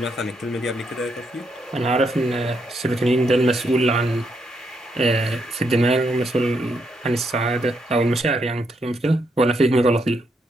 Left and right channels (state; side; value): normal; both; correlation 0.78